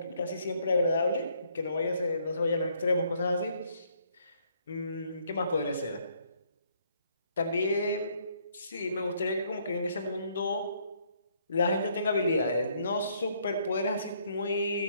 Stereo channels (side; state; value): both; inverted; correlation -0.68